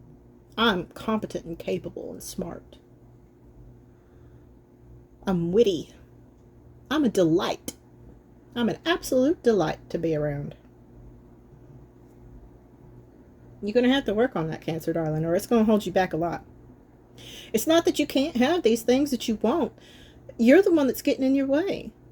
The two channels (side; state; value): both; identical; correlation 1.00